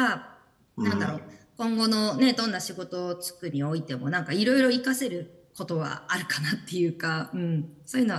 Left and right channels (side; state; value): both; identical; correlation 1.00